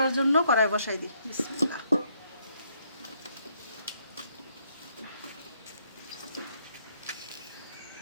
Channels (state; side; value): inverted; both; correlation -0.70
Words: জন্য কড়াই বসাই দিই। বিসমিল্লাহ।